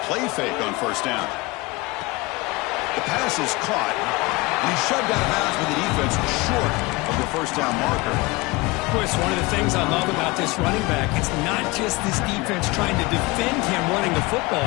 play fake on 1st down. The pass is caught, and he's shoved out of bounds with the defense short of the 1st down marker. Chris, one of the things I love about this running back, it's not just this defense trying to defend him running the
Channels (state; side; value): quieter; right; 23.0 dB